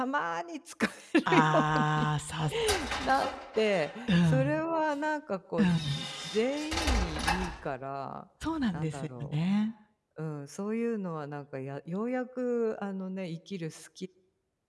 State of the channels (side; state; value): both; identical; correlation 1.00